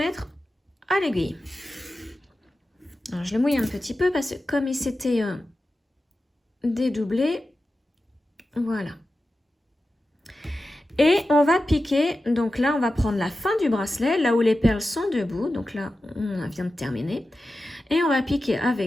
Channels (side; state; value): both; normal; correlation 0.93